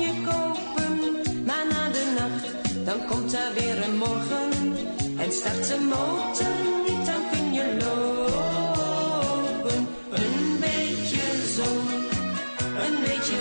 kopen. Maar na de nacht, dan komt er weer een morgen. En start de motor niet, dan kun je lopen. Een beetje zon, een beetje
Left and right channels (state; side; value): inverted; both; correlation -1.00